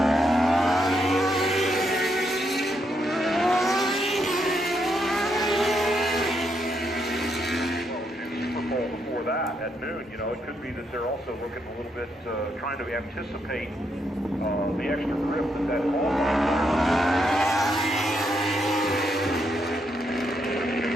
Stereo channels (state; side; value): normal; both; correlation 0.78